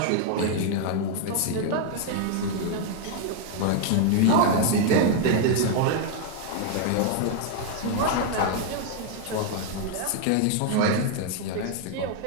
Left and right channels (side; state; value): both; different; correlation 0.00